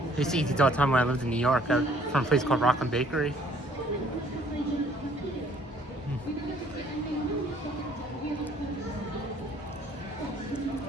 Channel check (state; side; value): normal; both; correlation 0.60